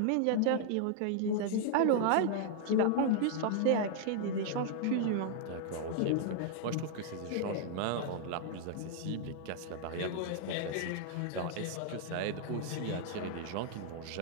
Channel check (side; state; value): both; different; correlation 0.00